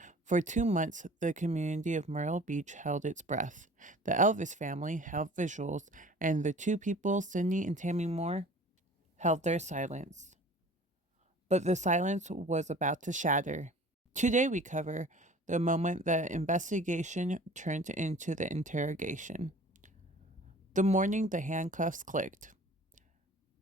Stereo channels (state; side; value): normal; both; correlation 0.46